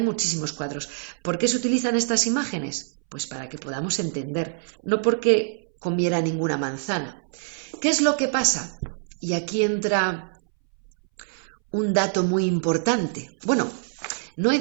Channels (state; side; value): silent; left; 62 dB below the other